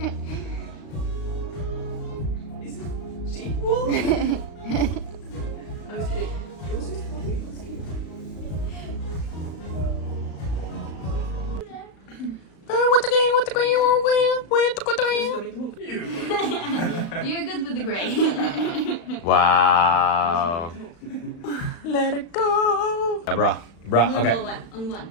Is it sheep wool? I was kidding. It was just fluffy. It was cute. You're good with the gray. Wow. Let it go. Yeah, bruh. Okay. Only one.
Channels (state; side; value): late; right; 35 ms